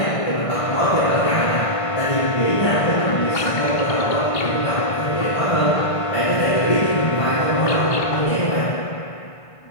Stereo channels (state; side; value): late; right; 1.5 ms